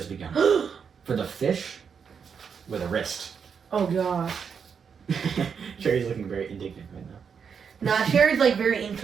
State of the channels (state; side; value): quieter; left; 6.6 dB